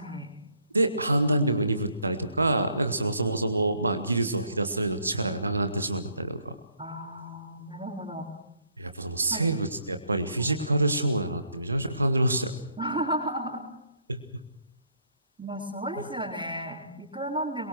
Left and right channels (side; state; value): both; inverted; correlation -0.67